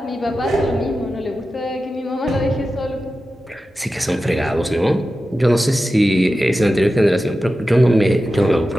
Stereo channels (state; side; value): normal; both; correlation 0.93